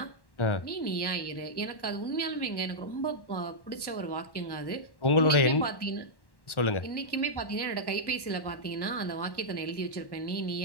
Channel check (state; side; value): late; right; 1.1 ms